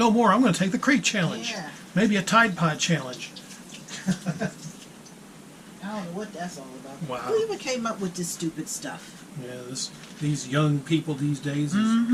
more. I'm going to take the crate challenge. Yeah. Maybe a Tide Pod challenge. I don't know what that's all about. Wow. Who even came up with this stupid stuff? Yeah, these young people these days.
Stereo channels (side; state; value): both; identical; correlation 1.00